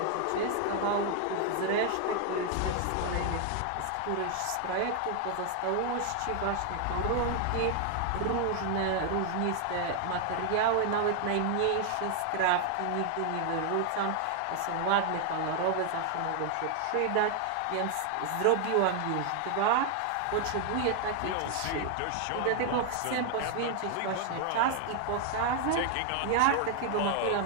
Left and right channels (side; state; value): both; different; correlation 0.00